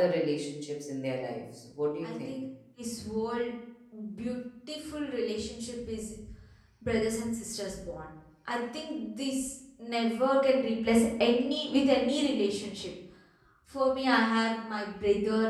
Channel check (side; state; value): both; identical; correlation 1.00